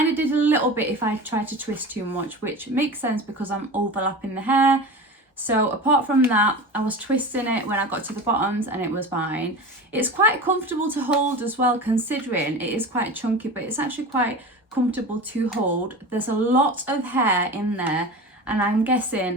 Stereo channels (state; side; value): normal; both; correlation 0.31